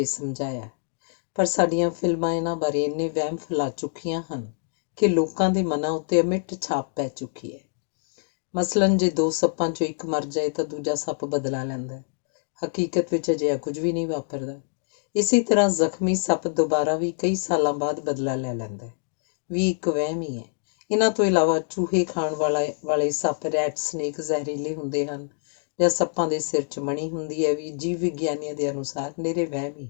ਸਮਝਾਇਆ, ਪਰ ਸਾਡੀਆਂ ਫਿਲਮਾਂ ਇਹਨਾਂ ਬਾਰੇ ਇੰਨੇ ਵਹਿਮ ਫੈਲਾ ਚੁੱਕੀਆਂ ਹਨ ਕਿ ਲੋਕਾਂ ਦੇ ਮਨਾਂ ਉੱਤੇ ਅਮਿੱਟ ਛਾਪ ਪੈ ਚੁੱਕੀ ਹੈ। ਮਸਲਨ, ਜੇ ਦੋ ਸੱਪਾਂ 'ਚੋਂ ਇੱਕ ਮਰ ਜਾਏ ਤਾਂ ਦੂਜਾ ਸੱਪ ਬਦਲਾ ਲੈਂਦਾ। ਹਕੀਕਤ ਵਿੱਚ ਅਜਿਹਾ ਕੁਝ ਵੀ ਨਹੀਂ ਵਾਪਰਦਾ। ਇਸੇ ਤਰ੍ਹਾਂ ਜ਼ਖਮੀ ਸੱਪ ਦੁਬਾਰਾ ਵੀ ਕਈ ਸਾਲਾਂ ਬਾਅਦ ਬਦਲਾ ਲੈ ਲੈਂਦਾ ਵੀ ਇੱਕ ਵਹਿਮ ਹੀ ਹੈ। ਇਹਨਾਂ ਤੋਂ ਇਲਾਵਾ ਚੂਹੇ ਖਾਣ ਵਾਲੇ ਸੱਪ ਰੈਟ ਸਨੇਕ ਜ਼ਹਿਰੀਲੇ ਹੁੰਦੇ ਹਨ ਜਾਂ ਸੱਪਾਂ ਦੇ ਸਿਰ 'ਚ ਮਣੀ ਹੁੰਦੀ ਹੈ ਵੀ ਜੀਵ ਵਿਗਿਆਨੀਆਂ ਦੇ ਅਨੁਸਾਰ ਨਿਰੇ ਵਹਿਮ ਹੀ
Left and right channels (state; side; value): silent; right; digital silence